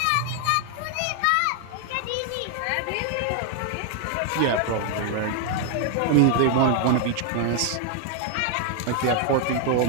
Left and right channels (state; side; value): different; both; correlation 0.00